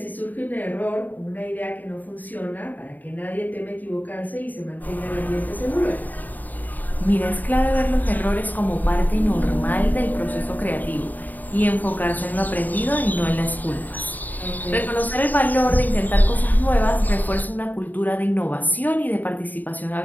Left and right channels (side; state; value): right; late; 0.084 ms